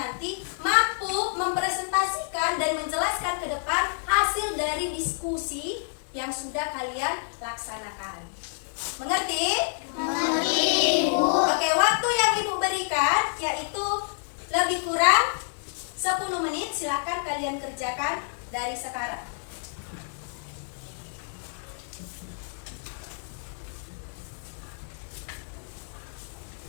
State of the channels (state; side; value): silent; right; digital silence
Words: mampu mempresentasikan dan menjelaskan ke depan hasil dari diskusi yang sudah kalian laksanakan. Mengerti? Mengerti, Bu. Oke, waktu yang Ibu berikan yaitu lebih kurang 10 menit. Silakan kalian kerjakan dari sekarang.